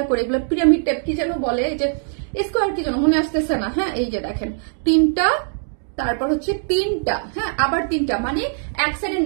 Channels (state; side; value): silent; left; digital silence